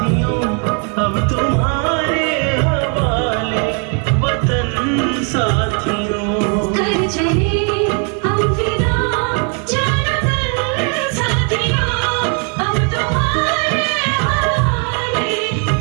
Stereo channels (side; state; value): left; quieter; 39.6 dB